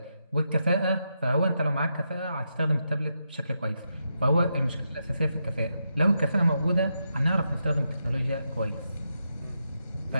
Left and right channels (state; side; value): inverted; both; correlation -0.84